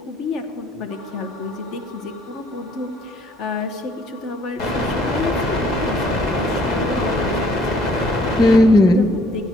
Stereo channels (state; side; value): normal; both; correlation 0.64